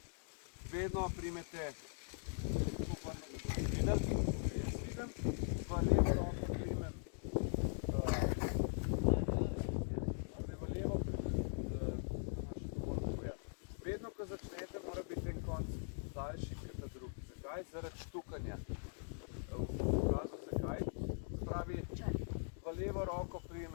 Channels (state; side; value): silent; right; digital silence